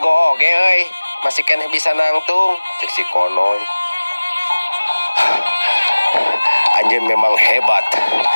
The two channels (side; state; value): both; inverted; correlation -1.00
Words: oge euy, masih keneh bisa nangtung, cek si Konoy. Anjeun memang hebat.